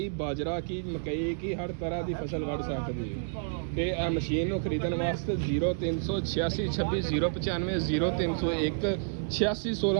ਬਾਜਰਾ ਕੀ ਮਕਈ ਕੀ ਹਰ ਤਰ੍ਹਾਂ ਦੀ ਫਸਲ ਵੱਢ ਸਕਦੇ ਹੋ। ਤੇ ਇਹ ਮਸ਼ੀਨ ਨੂੰ ਖਰੀਦਣ ਵਾਸਤੇ 0386 26 095 0301 86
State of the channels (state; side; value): silent; left; digital silence